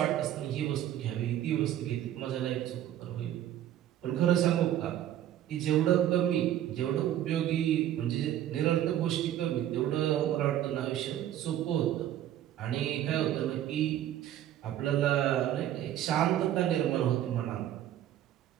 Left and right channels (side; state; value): left; quieter; 11.9 dB